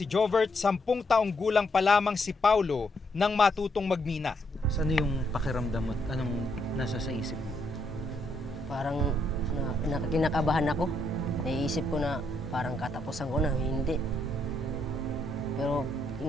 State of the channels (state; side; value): normal; both; correlation 0.75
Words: Jovert, 10 taong gulang pa lamang si Paulo nang matutong magmina. Ano yung pakiramdam mo? Anong nasa sa isip mo? Parang kinakabahan ako. Naiisip ko na parang katapusan ko na, hindi. Pero